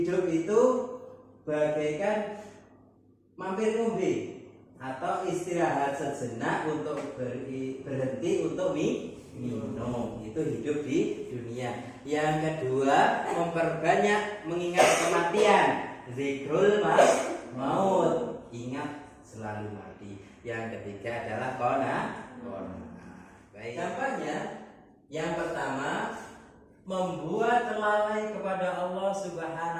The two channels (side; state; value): both; identical; correlation 1.00